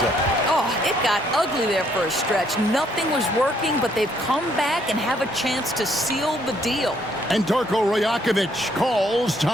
up. Oh, it got ugly there for a stretch. Nothing was working, but they've come back and have a chance to seal the deal. And Darko Rajakovic calls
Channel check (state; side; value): normal; both; correlation 0.68